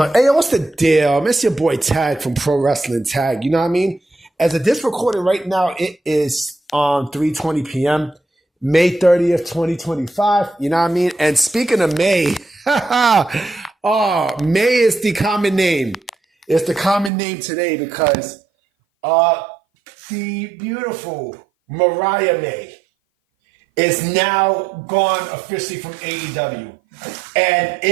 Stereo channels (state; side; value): drops out; left; at 17.1 s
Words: what's the deal? It's your boy Tag from Pro Wrestling Tag. You know what I mean? As of this recording right now, it is on 3:20 p.m., May 30th, 2025. You know what I mean? And speaking of May, May is the common name. It's the common name today because the beautiful Mariah May is now gone officially from AEW. And